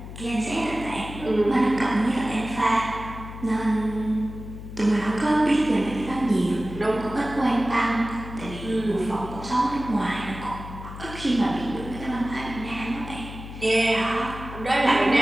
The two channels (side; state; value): left; noise; hum, 11 dB below the sound